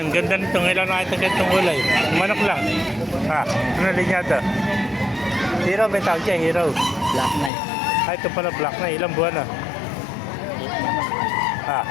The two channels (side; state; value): right; drops out; at 7.5 s